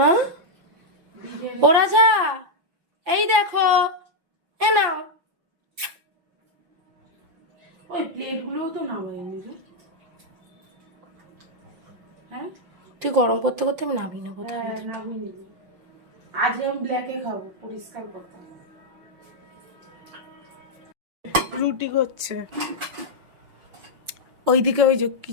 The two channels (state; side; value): late; left; 5.8 ms